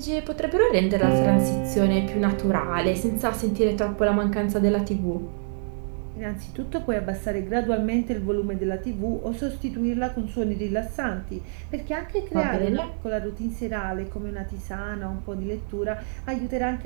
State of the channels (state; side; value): silent; left; digital silence